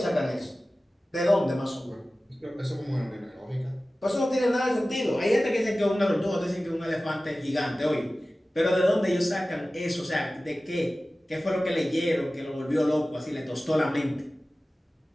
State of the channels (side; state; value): both; normal; correlation 0.96